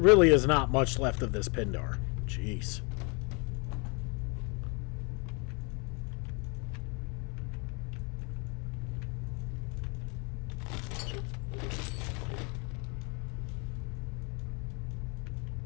is not much left of this Pindar. Jeez.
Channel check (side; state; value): right; quieter; 32.6 dB